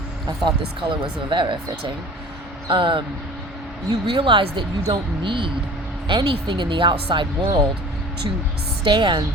I thought this color was very fitting. You realize that you don't need anything in the outside world to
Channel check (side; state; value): both; normal; correlation 0.43